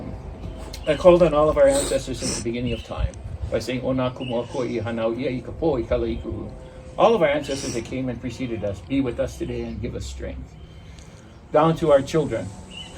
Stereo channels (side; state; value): both; identical; correlation 1.00